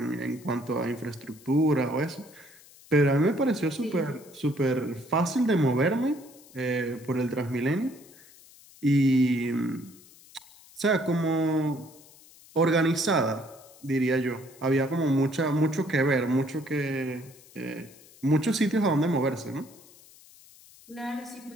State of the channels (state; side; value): noise; left; hiss, 24 dB below the sound